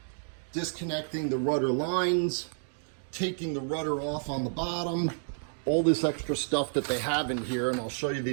disconnecting the rudder lines, taking the rudder off on the bottom, all this extra stuff that they have in here, and I'll show you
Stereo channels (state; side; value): silent; left; digital silence